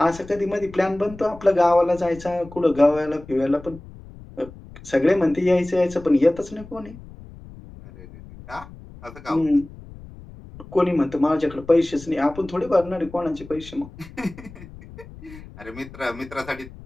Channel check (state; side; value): noise; left; rumble, 18 dB below the sound